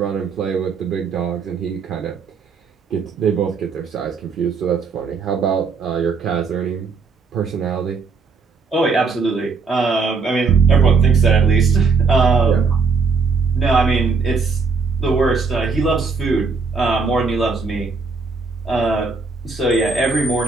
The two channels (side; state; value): left; quieter; 4.7 dB